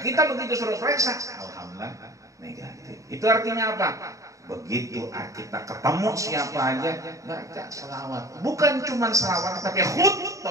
kita begitu suruh periksa, alhamdulillah negatif. Itu artinya apa? Begitu kita ketemu siapa aja, baca selawat. Bukan cuma selawat, tapi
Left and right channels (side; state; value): left; late; 0.16 ms